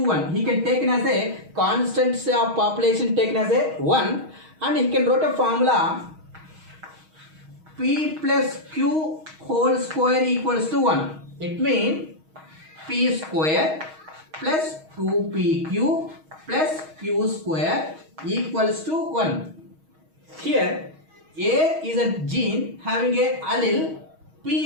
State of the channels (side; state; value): left; late; 6.3 ms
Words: He can take it as a constancy of population taken as a 1, and he can write a formula P plus Q whole square equals to 1. It means P square plus 2PQ plus Q square equals to 1. Here A is a gene having a allele P